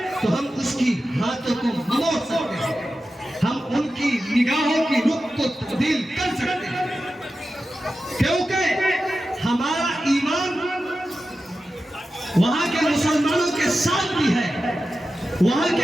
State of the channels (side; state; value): both; normal; correlation 0.92